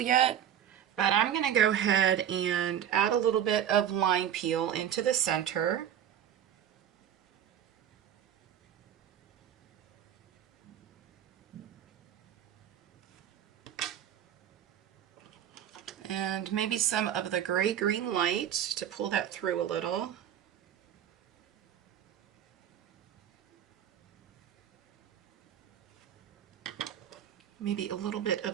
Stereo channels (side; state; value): left; quieter; 10.0 dB